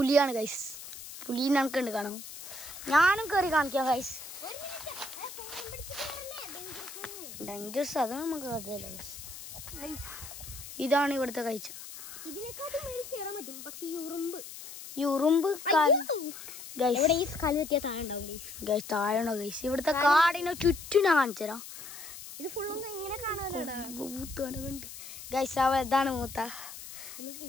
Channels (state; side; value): noise; left; hiss, 12 dB below the sound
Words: ഗൈസ്. പുലി നമുക്കുണ്ട് കാണാം. ഞാനും കയറി കാണിക്കാം ഗൈസ്. ഡേഞ്ചറസ് അത് നമുക്ക് അതല്ല ഗൈസ്. ഇതാണ് ഇവിടുത്തെ കാഴ്ച. ഈ ഉറുമ്പ് താഴെയുണ്ടോ ഗൈസ്? ഇവിടുത്തെ കാടിനെ ചുറ്റും ഞാൻ കാണിച്ചു തരാം. ഗൈസ് ഇതാണ് മൂത്ത.